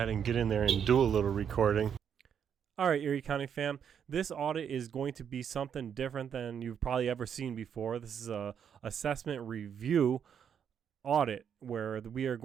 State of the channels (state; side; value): quieter; left; 8.0 dB